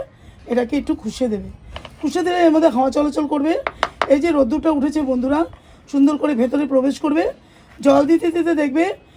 এটাকে একটু খুশে দেবে। খুশে দিলে এর মধ্যে হাওয়া চলাচল করবে। এই যে রোদ্দুরটা উঠেছে বন্ধুরা, সুন্দর করে ভেতরে প্রবেশ করবে। জল দিতে দিতে দেখবে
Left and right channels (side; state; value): both; identical; correlation 1.00